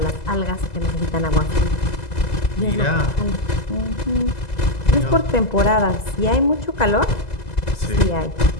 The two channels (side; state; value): right; late; 2.0 ms